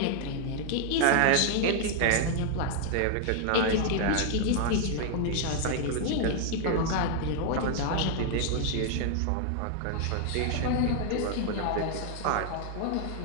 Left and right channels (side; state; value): both; different; correlation 0.00